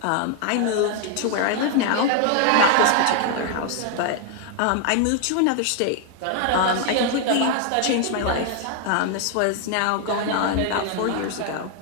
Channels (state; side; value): different; both; correlation 0.00